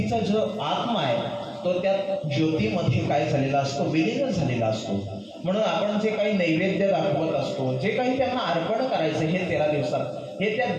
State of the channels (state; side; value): identical; both; correlation 1.00